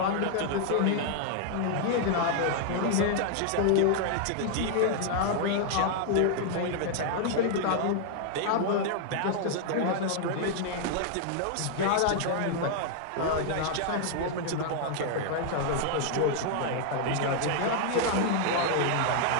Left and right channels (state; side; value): different; both; correlation 0.00